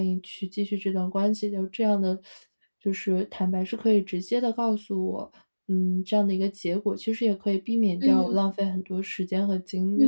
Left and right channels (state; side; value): inverted; both; correlation -1.00